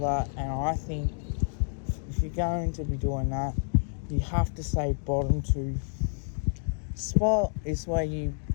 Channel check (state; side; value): silent; right; digital silence